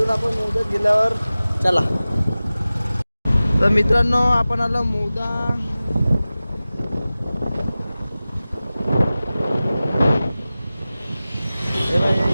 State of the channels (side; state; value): both; inverted; correlation -0.97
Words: आपण मौदात गेल्यावर. चला. तर मित्रांनो आपण आलो मौदा.